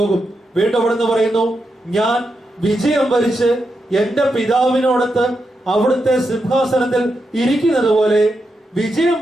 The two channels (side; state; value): both; normal; correlation 0.86